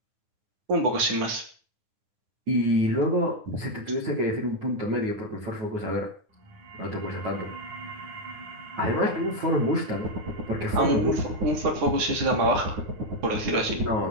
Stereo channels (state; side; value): late; left; 9.8 ms